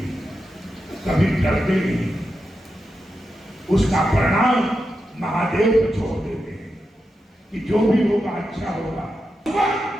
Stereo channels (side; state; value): both; normal; correlation 0.88